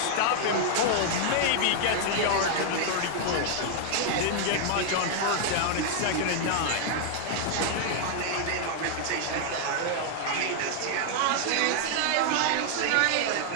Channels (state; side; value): different; both; correlation 0.00